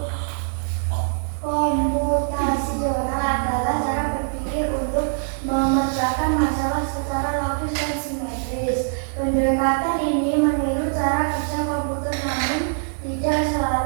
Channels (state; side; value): silent; left; digital silence